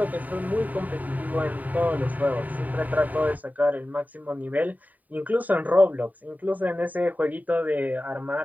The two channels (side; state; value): left; late; 0.079 ms